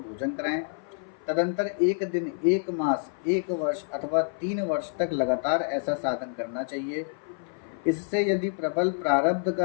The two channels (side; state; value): right; silent; 55 dB below the other